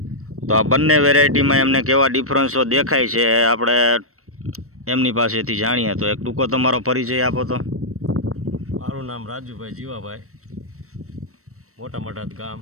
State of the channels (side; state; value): left; late; 0.64 ms